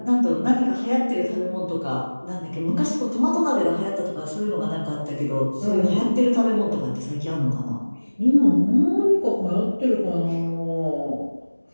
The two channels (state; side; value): inverted; both; correlation -1.00